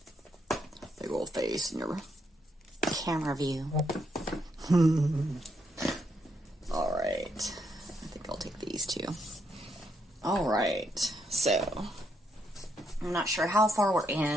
Big old face in your camera view. All right. I think I'll take these two. All right. So, I'm not sure how far we're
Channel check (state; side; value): normal; both; correlation 0.77